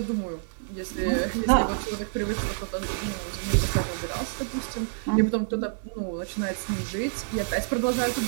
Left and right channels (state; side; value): silent; left; digital silence